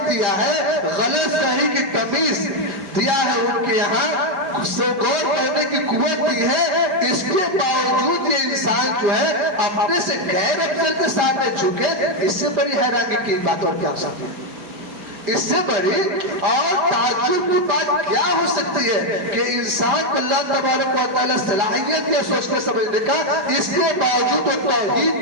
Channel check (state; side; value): late; left; 5.0 ms